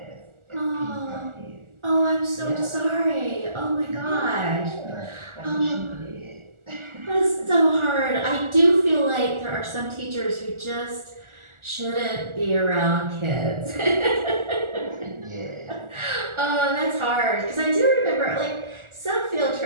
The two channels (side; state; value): left; late; 1.4 ms